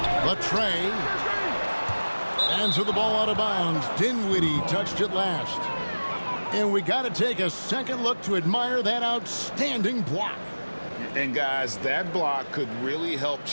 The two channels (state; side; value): inverted; both; correlation -1.00